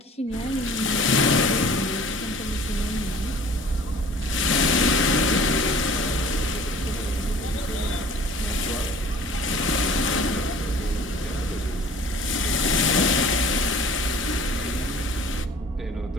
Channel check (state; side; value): normal; both; correlation 0.48